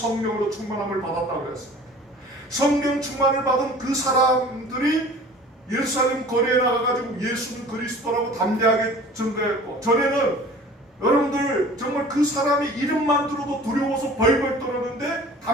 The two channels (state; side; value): normal; both; correlation 0.45